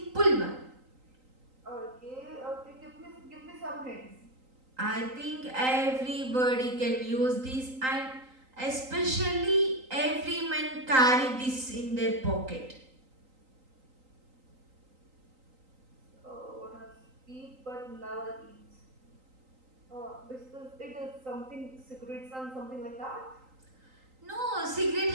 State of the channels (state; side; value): late; left; 3.9 ms